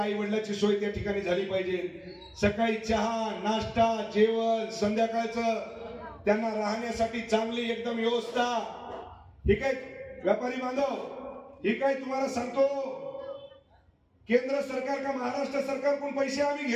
वडिलांची सोय त्या ठिकाणी झाली पाहिजे। सकाळी चहा नाश्ता जेवण संध्याकाळचं त्यांना राहण्यासाठी चांगली एकदम व्यवस्था। ही काय व्यापारी बांधव, ही काय तुम्हाला सांगतो केंद्र सरकार का महाराष्ट्र सरकार कोण पैसे आम्ही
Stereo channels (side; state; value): both; identical; correlation 1.00